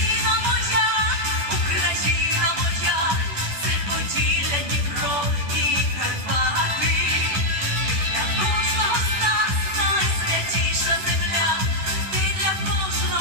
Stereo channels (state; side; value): late; left; 10 ms